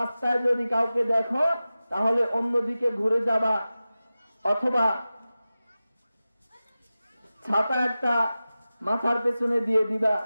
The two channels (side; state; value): both; inverted; correlation -0.95